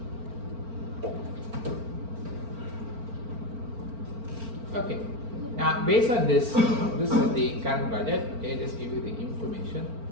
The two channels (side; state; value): left; late; 4.4 ms